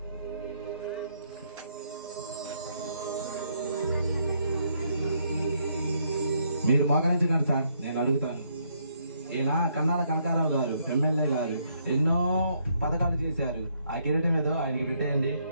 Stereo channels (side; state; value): both; inverted; correlation -0.72